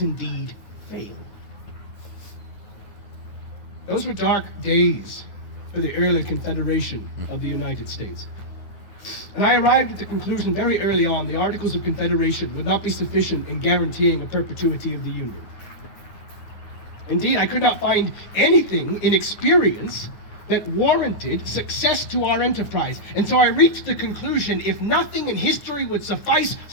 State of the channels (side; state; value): right; late; 9.4 ms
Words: indeed fail? Those were dark days for the early Confederation of the United States. And I arrived at the conclusion very early on the Articles of Confederation would not be sufficient in guaranteeing a perpetuity of the Union. Indeed, I could not find anything in experience that warranted success to our enterprise. And so I reached the conclusion, if nothing in history would suffice,